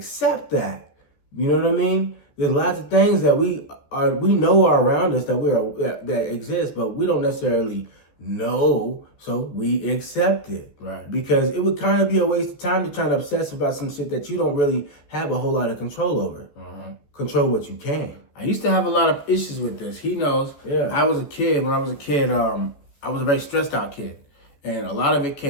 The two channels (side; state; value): right; late; 14 ms